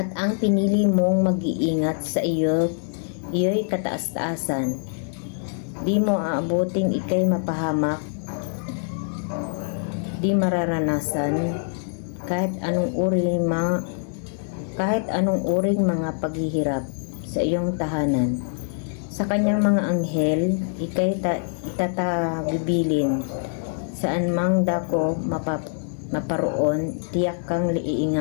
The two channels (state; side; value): silent; right; digital silence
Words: ang pinili mong mag-iingat sa iyo'y kataas-taasan. Di mo aabuting ikay mapahamak, di mararanasan kahit anong uring mga paghihirap sa iyong tahanan. Sa kanyang mga anghel, ikay itatabibilin. Saan mang dako maparoon, tiyak kang